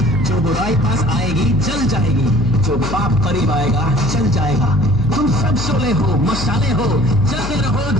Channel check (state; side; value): noise; left; hum, 7 dB below the sound